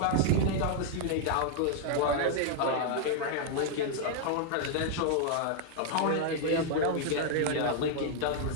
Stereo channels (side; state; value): both; different; correlation 0.00